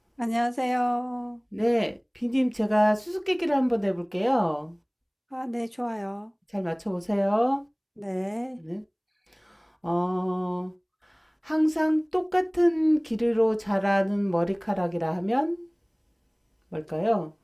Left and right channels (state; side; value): identical; both; correlation 1.00